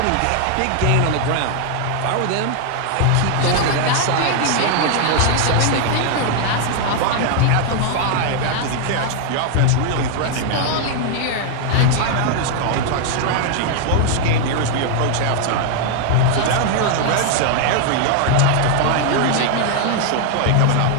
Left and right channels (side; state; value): both; different; correlation 0.00